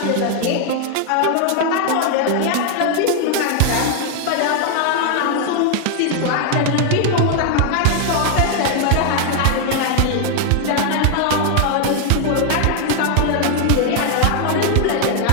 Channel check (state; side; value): different; both; correlation 0.00